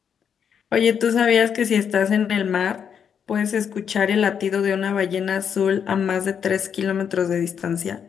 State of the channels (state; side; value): quieter; right; 7.6 dB